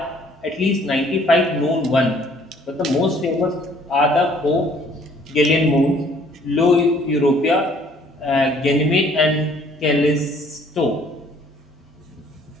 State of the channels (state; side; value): normal; both; correlation 0.59